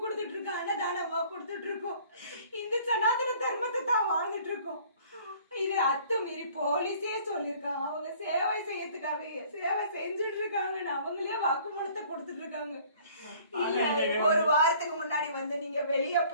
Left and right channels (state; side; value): inverted; both; correlation -0.53